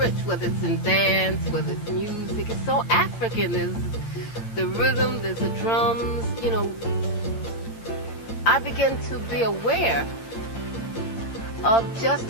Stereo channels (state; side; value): late; right; 15 ms